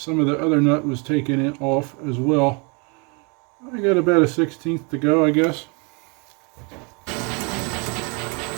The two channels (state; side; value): quieter; left; 32.6 dB